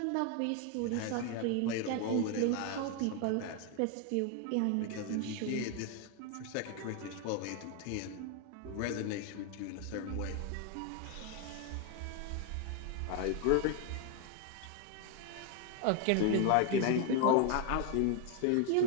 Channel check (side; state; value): both; different; correlation 0.01